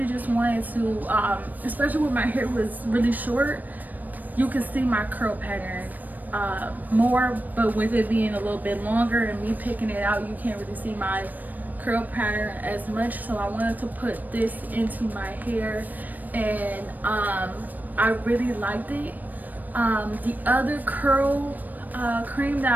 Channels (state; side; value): late; left; 0.085 ms